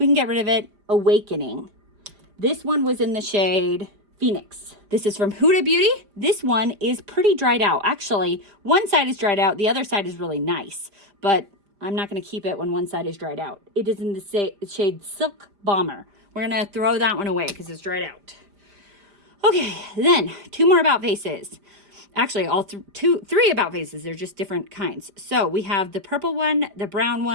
can get rid of it. Awakening. This one was in the shade Phoenix. This is from Huda Beauty. This one is pretty dried out. Actually, one side is dried out. The other side is really nice, but I'm not going to keep it when one side is dried out. It is in the shade Silk Bomber. We're going to throw that one away because it's dried out. Okay, then 2 more About Faces. Actually, all 3 About Faces. They're just different kinds. So we have the purple one, the brown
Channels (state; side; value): late; left; 5.0 ms